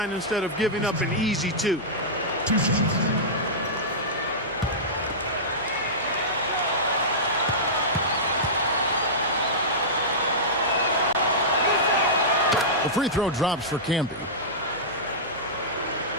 instead of giving up an easy 2. The free throw drops for Camby.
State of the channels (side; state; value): left; noise; hum, 25 dB below the sound